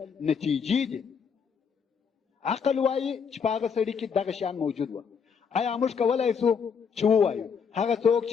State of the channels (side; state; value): right; quieter; 6.4 dB